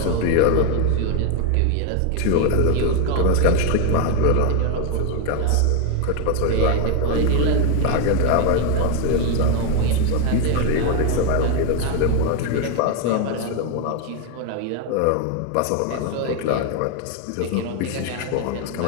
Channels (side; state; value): both; different; correlation 0.01